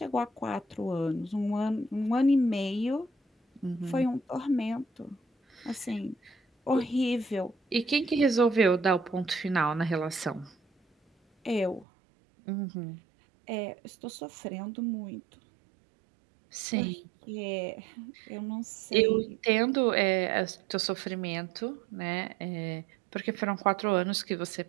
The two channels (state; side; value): drops out; left; at 11.9 s